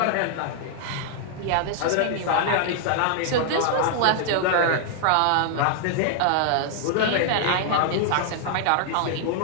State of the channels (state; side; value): different; both; correlation -0.01